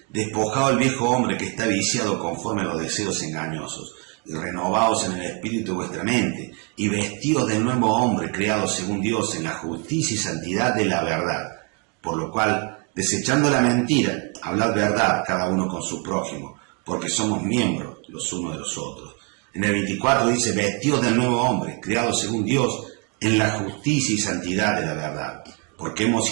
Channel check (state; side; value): quieter; left; 33.0 dB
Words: despojado el viejo hombre que está viciado conforme a los deseos engañosos, y renovaos en el espíritu de vuestra mente, y vestidos del nuevo hombre creado según Dios en la justicia y santidad de la verdad. Por lo cual, desechando la mentira, hablad verdad cada uno con su prójimo, porque somos miembros los unos de los otros. En el 24 dice, vestidos del nuevo hombre creado según Dios en la justicia y santidad de la verdad. Porque hemos